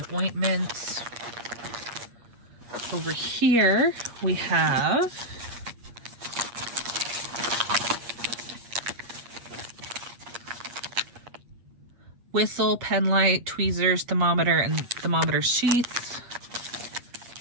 ointments. Over here we have whistle, pen light, tweezers, thermometer, and thermometer sheaths.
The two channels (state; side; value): late; left; 8.5 ms